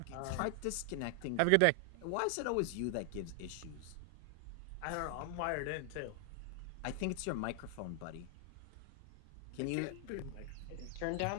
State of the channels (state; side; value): different; both; correlation 0.00